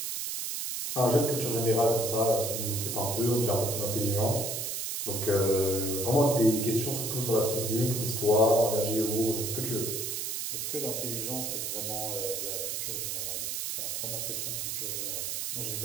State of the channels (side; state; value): right; noise; hiss, 3 dB below the sound